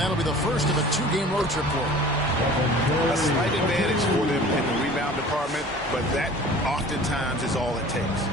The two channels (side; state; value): both; normal; correlation 0.44